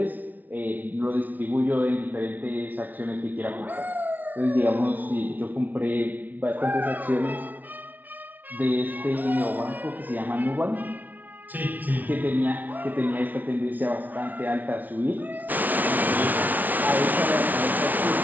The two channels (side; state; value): left; late; 0.079 ms